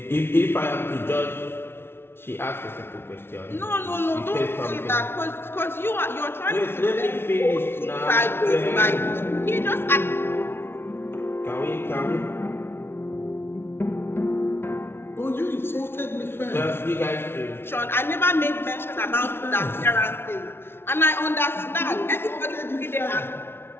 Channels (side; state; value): right; late; 0.11 ms